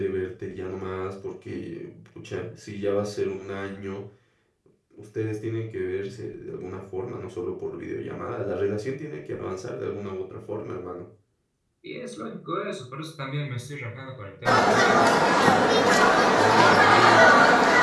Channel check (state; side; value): identical; both; correlation 1.00